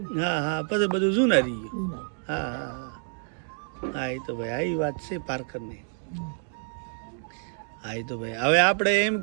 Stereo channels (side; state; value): left; silent; 58 dB below the other